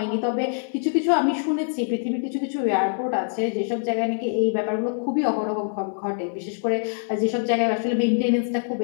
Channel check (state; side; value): silent; right; 58 dB below the other